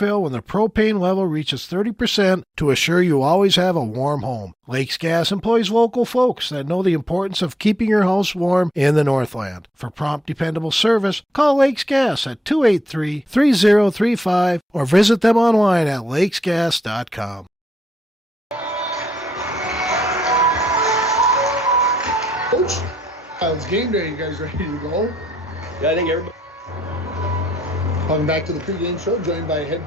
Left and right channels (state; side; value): normal; both; correlation 0.79